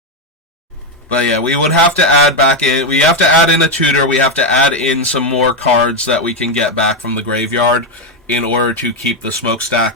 But yeah, we would have to add back in, we have to add in a tutor, we have to add in some more cards that we can get back from the graveyard in order to keep the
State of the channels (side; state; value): both; normal; correlation 0.05